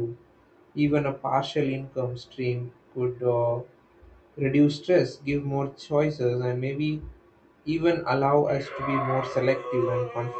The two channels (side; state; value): both; identical; correlation 1.00